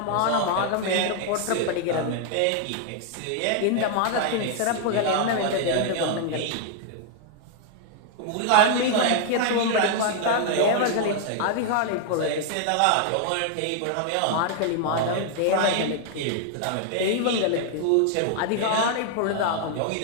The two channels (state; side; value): different; both; correlation 0.00